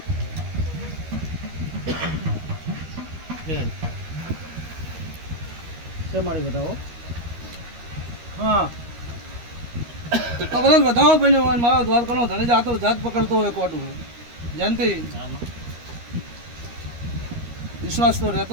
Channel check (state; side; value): late; left; 13 ms